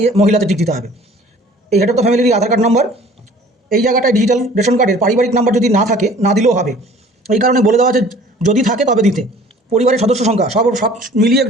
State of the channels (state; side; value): normal; both; correlation 0.50